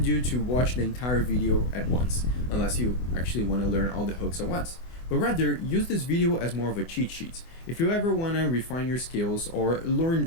you to watch the entire video at once, unless you actually want to learn all the hooks at once, but rather use this video as more of a cheat sheet. If you ever want to refine your skills or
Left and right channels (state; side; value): late; right; 24 ms